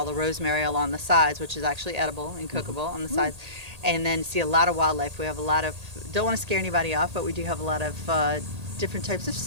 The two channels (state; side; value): late; left; 1.8 ms